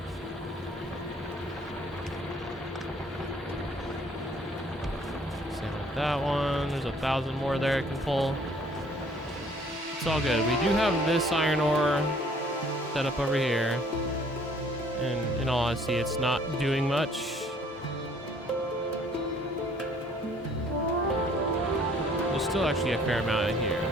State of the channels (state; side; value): normal; both; correlation 0.59